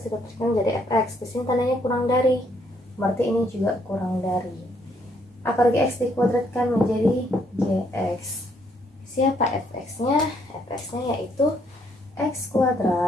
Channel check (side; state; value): both; normal; correlation 0.70